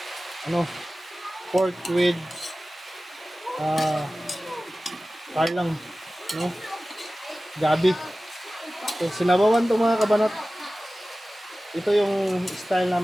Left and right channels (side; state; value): both; normal; correlation 0.96